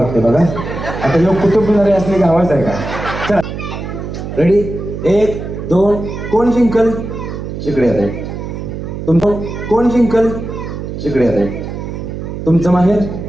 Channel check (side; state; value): right; noise; hum, 7 dB below the sound